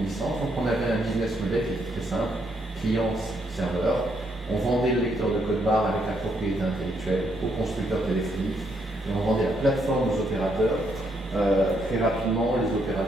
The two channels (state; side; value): normal; both; correlation 0.74